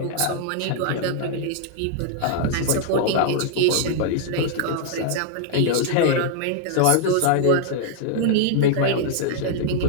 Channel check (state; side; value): different; both; correlation 0.00